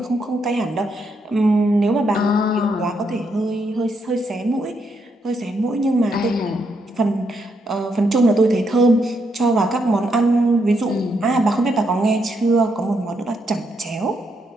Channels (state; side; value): normal; both; correlation 0.78